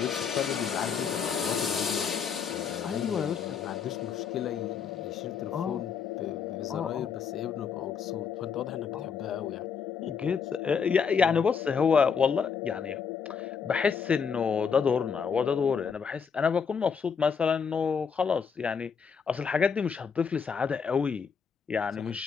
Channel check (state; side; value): quieter; right; 6.4 dB